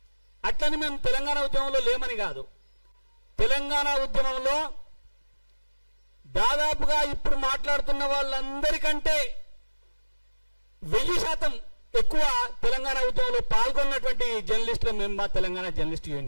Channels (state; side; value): inverted; both; correlation -1.00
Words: అట్లని మేము తెలంగాణ ఉద్యమంలో లేమని కాదు. తెలంగాణ ఉద్యమంలో దాదాపుగా ఇప్పుడు మాట్లాడుతున్న వాళ్ళందరికంటే 1000% ఎక్కువ తెలంగాణ ఉద్యమంలో పాల్గొన్నటువంటి జర్నలిస్టులు మేము మా తెలంగాణ జర్నలిస్ట్